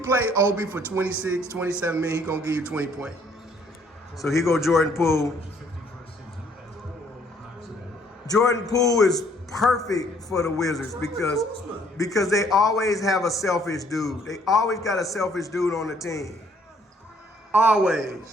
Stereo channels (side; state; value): both; normal; correlation 0.64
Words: play Obi for 26, 27 minutes, he gonna give you 20 points. So he go Jordan Poole. Jordan Poole is perfect for the Wizards because they always have a selfish dude. They always got a selfish dude on the team.